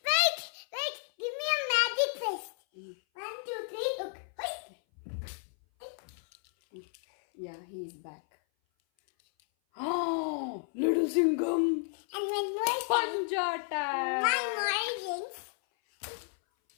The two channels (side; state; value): right; silent; 56 dB below the other